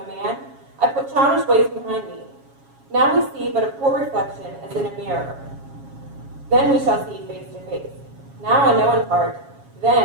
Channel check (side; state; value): left; late; 7.3 ms